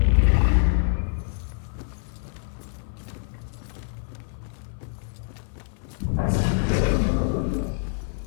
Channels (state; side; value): silent; right; 57 dB below the other